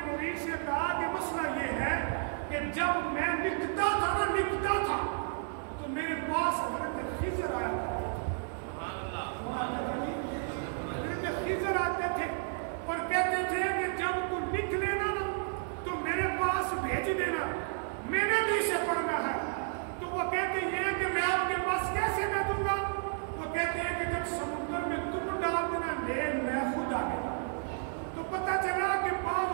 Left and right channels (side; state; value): left; silent; 56 dB below the other